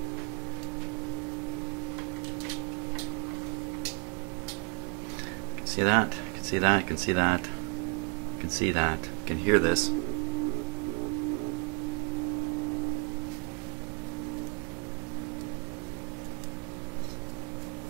See that? You can see that, you can see that, you can see that, you can hear this.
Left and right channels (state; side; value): quieter; left; 32.4 dB